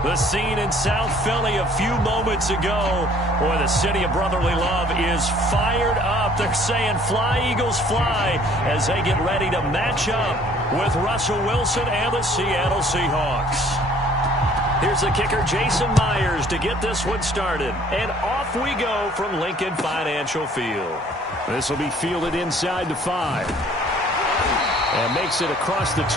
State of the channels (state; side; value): normal; both; correlation 0.56